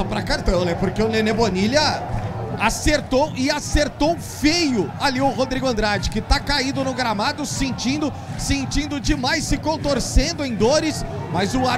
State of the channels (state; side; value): identical; both; correlation 1.00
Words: pra cartão, né? Porque o Nenê Bonilha acertou feio ali o Rodrigo Andrade, que tá caído no gramado, sentindo demais, se contorcendo em dores, mas o